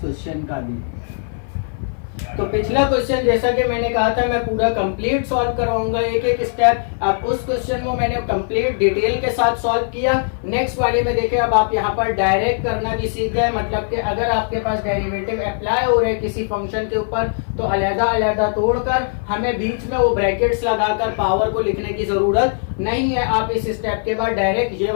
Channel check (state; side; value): silent; right; 57 dB below the other